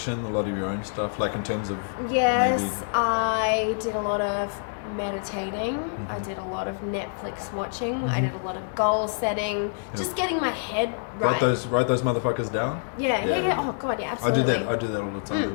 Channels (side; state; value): right; silent; digital silence